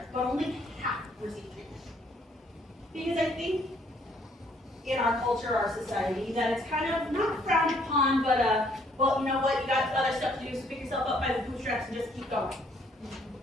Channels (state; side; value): normal; both; correlation 0.65